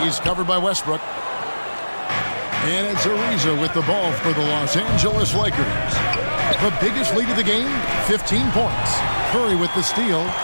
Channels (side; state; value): both; inverted; correlation -1.00